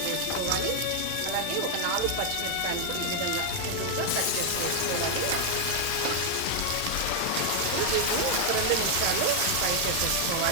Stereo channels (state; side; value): different; both; correlation 0.00